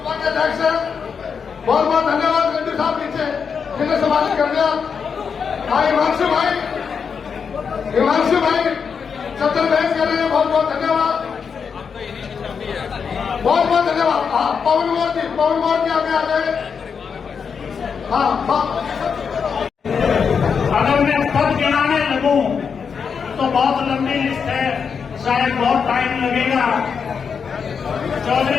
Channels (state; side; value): quieter; right; 6.2 dB